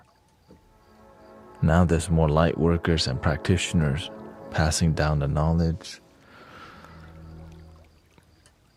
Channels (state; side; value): identical; both; correlation 1.00